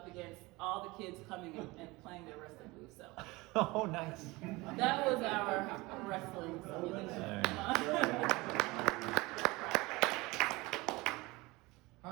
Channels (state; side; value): quieter; left; 22.4 dB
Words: against all the kids coming and playing their wrestling moves, so. Oh, nice. That was our wrestling simulation.